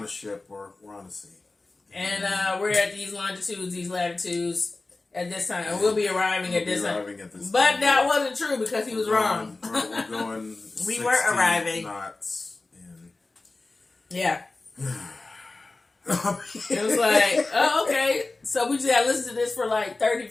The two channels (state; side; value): quieter; right; 3.3 dB